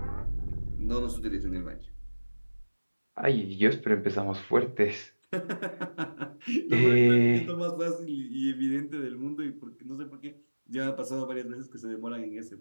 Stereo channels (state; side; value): inverted; both; correlation -1.00